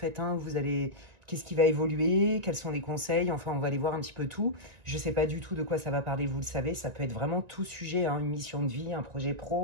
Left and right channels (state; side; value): late; left; 1.9 ms